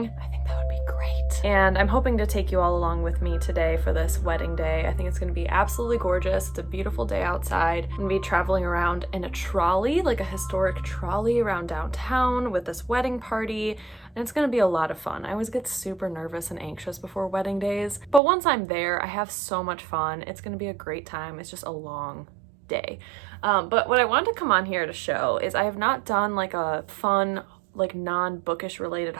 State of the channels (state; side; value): drops out; left; at 18.2 s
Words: I think that would be great. And I'm hoping to take you all along with me today for this wedding day. I think it's gonna be absolutely gorgeous. It's a beautiful day outside. I'm gonna be traveling around in a trolley, like a historic trolley around downtown with this wedding party. And it's gonna be a lot of fun. I always get super nervous and anxious before wedding days, but once I'm there, I have so much fun. It's gonna be a great time. It's just a long day. But what I wanted to come on here to show is I have not done like a fun, like non-bookish related